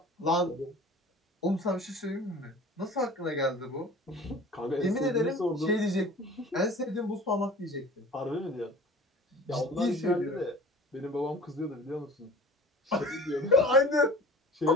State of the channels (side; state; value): both; normal; correlation 0.43